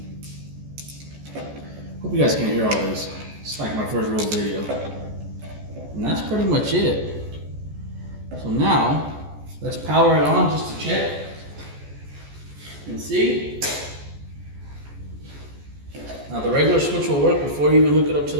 Hope you guys can hear all this. It's like my first real video. And that's pretty much it. So now let's power it on just to check and see. Now the regular switch will work before you even hook it up to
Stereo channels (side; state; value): left; late; 14 ms